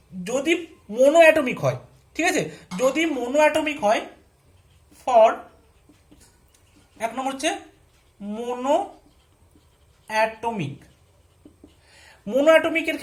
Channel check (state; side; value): identical; both; correlation 1.00